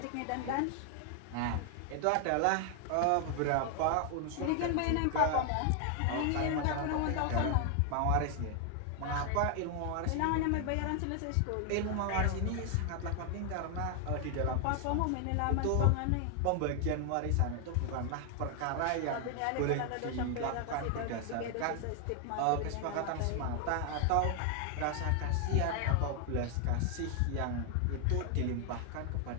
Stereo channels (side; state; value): both; different; correlation 0.00